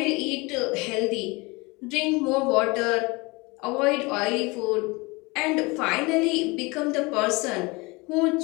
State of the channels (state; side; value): quieter; right; 25.6 dB